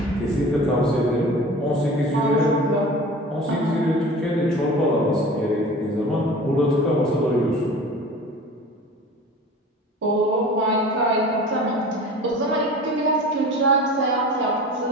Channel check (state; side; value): normal; both; correlation 0.39